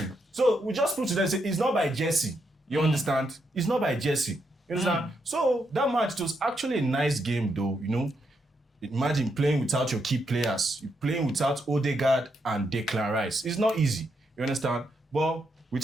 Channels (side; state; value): both; normal; correlation 0.80